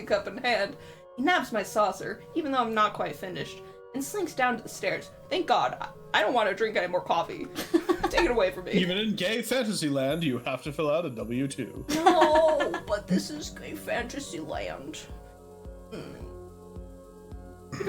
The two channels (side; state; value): both; identical; correlation 1.00